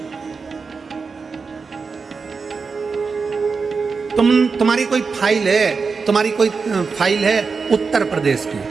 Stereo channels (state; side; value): quieter; left; 4.9 dB